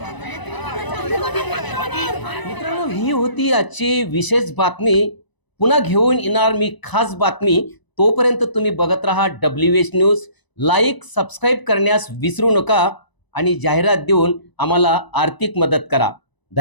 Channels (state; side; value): late; right; 1.0 ms